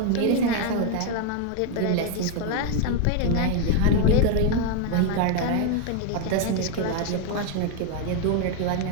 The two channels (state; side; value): different; both; correlation 0.01